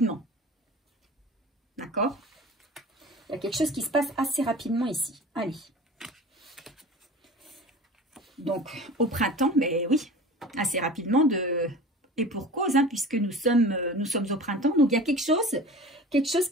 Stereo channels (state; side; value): normal; both; correlation 0.38